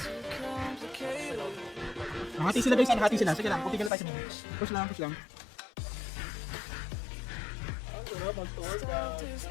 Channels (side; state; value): right; drops out; at 3.9 s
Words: Nakati sila, guys. Sige lang. Puti ka tayo sa mini. Push lang.